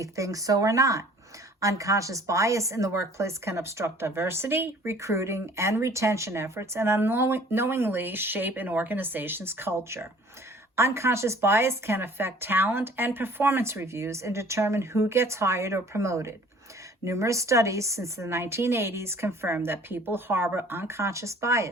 think so or not. Unconscious bias in the workplace can obstruct diversity, recruiting, and retention efforts, and unknowingly shape an organization's culture. Unconscious bias can affect talent and performance reviews and determine who gets hired or promoted. Numerous studies since the 1980s confirm that people harbor unconscious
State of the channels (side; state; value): both; normal; correlation 0.53